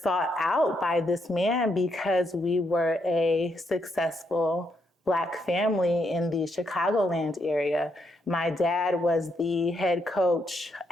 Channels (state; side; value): normal; both; correlation 0.77